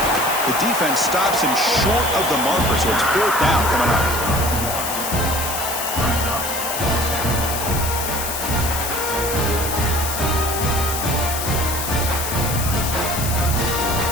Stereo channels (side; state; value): left; noise; hiss, 4 dB below the sound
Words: The defense stops him short of the marker, so it's 4th down coming up.